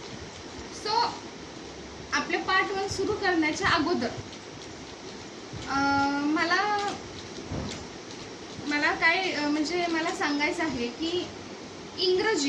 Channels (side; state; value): both; identical; correlation 1.00